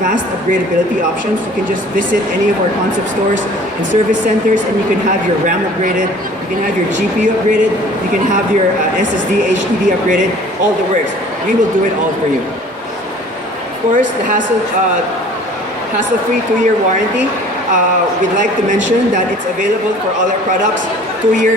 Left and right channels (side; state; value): both; normal; correlation 0.49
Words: upgradability options. You can just visit any of our concept stores and service centers, and you can have your RAM upgraded, you can have your GPU upgraded, you can have your SSD, HDD upgraded, all the works. We will do it all for you. Of course, the hassle-free 2-year warranty. We'd like to mention that it's available for all our products, 2